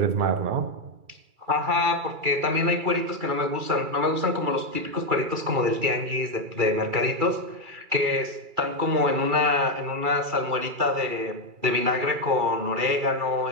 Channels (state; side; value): late; left; 2.3 ms